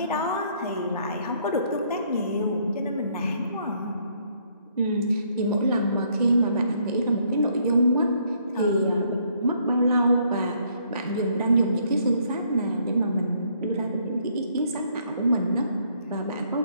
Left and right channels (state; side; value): inverted; both; correlation -0.68